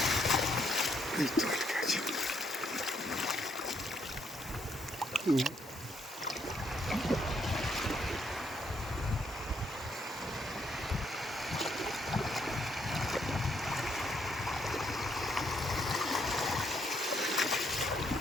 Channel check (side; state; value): both; normal; correlation 0.73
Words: এই তো আটকে আছে।